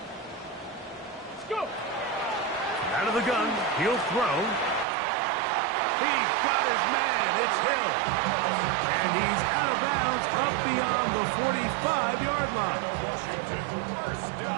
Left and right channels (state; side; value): drops out; left; at 4.9 s